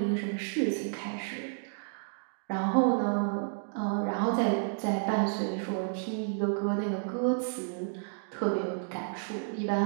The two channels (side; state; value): left; silent; digital silence